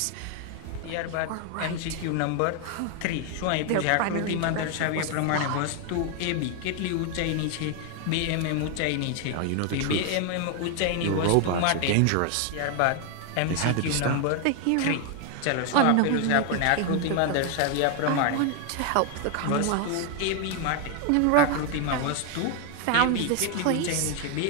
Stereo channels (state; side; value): different; both; correlation 0.01